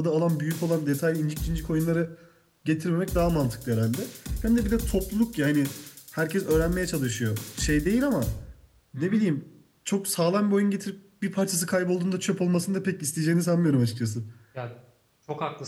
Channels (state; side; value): identical; both; correlation 1.00